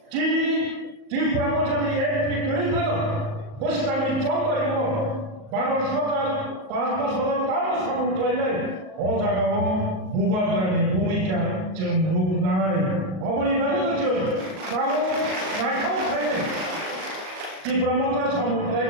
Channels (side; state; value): left; late; 38 ms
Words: चीनी त्रिपुरा मजानि एंट्री करिफानो बुसकानि चंबारिबो भारत सरकार 5 बছर ताबो सामंतलायनाय अ जायगायाव भूबाग्रानि भूमिका जों नुनाय अबनि बागै जों दाबो नायथाव थायो त्रिपुरा मजा